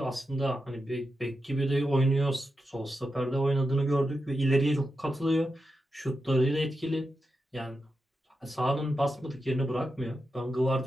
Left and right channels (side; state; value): both; normal; correlation 0.88